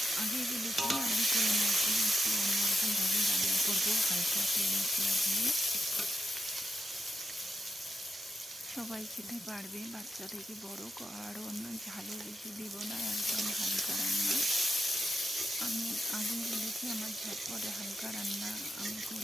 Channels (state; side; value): normal; both; correlation 0.85